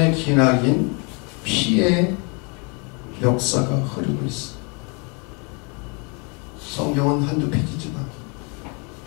기나긴 피의 역사가 흐르고 있어요. 성경은 한두 페이지지만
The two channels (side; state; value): right; quieter; 33.4 dB